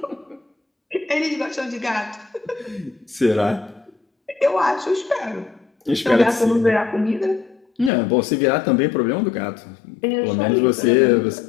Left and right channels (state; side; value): drops out; right; at 7.9 s